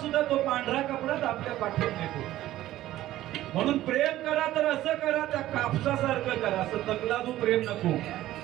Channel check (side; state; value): left; quieter; 14.6 dB